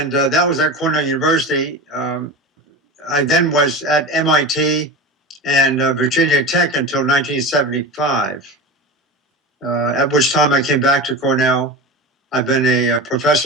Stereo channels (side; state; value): both; normal; correlation 0.27